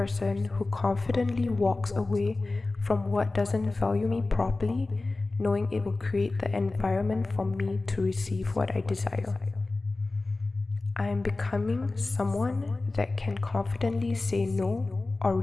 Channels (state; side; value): quieter; right; 3.3 dB